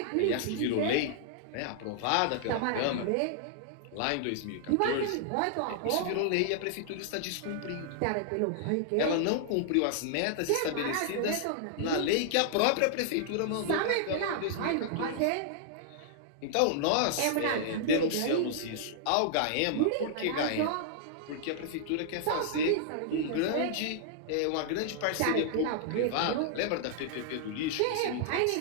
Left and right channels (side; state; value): both; different; correlation -0.01